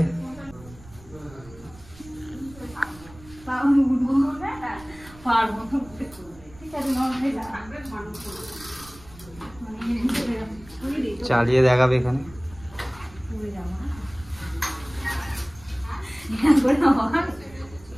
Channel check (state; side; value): noise; right; rumble, 21 dB below the sound